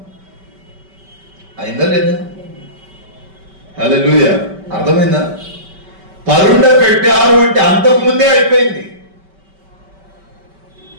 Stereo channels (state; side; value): late; left; 5.2 ms